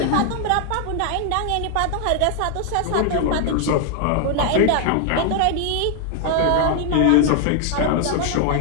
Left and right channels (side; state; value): both; different; correlation 0.00